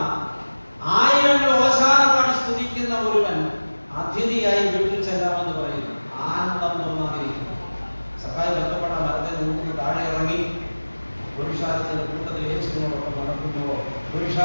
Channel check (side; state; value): both; inverted; correlation -1.00